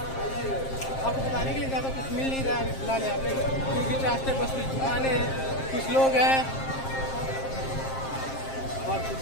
आपको बताने के लिए ज़्यादा कुछ मिल नहीं रहा है फिलहाल यहाँ पे, क्योंकि रास्ते बस कुछ दुकानें हैं, कुछ लोग हैं और कुछ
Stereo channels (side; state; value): right; late; 7.5 ms